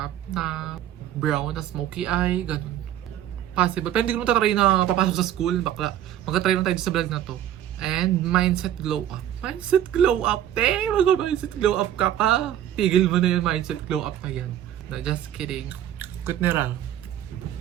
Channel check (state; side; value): quieter; left; 11.5 dB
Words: na brown, na smoky eye, ganun. Possible. Pero hindi ko matatry na papasok sa school, bakla. Mag-try lang tayo sa vlog na to. And mindset glow up. Mindset glow up, te! Mag-mindset glow up ka pa. Tigil mo na yung mindset glow up na yan. No, just kidding. Good na.